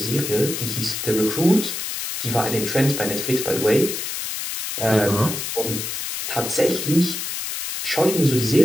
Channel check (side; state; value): left; noise; hiss, 4 dB below the sound